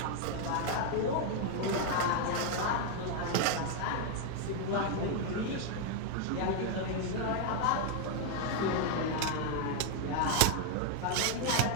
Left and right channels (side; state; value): both; different; correlation 0.01